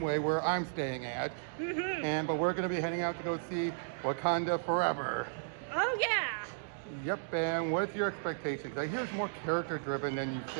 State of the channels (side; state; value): left; silent; digital silence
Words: where I'm staying at, but we're going to be heading out to go see Wakanda Forever. Oh yeah. Yep, and what's your expectations? I hear it's more character-driven than you